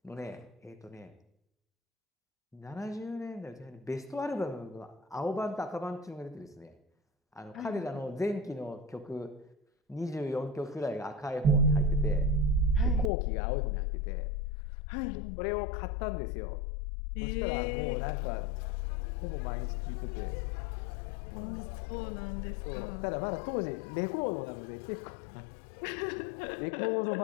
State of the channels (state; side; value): drops out; right; at 13.1 s